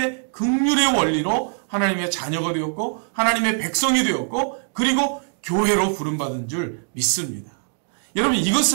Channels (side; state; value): left; silent; 64 dB below the other